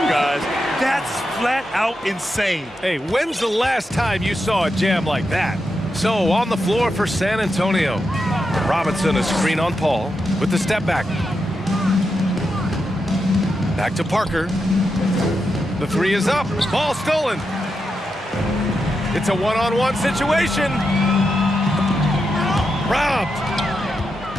guys. That's flat out insane. Hey, when's the last time you saw a jam like that? So on the floor for San Antonio. Robinson a screen on Paul with the step back. Back to Parker. The three is up. Ball stolen. It's a one-on-one situation. Robbed.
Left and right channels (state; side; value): normal; both; correlation 0.86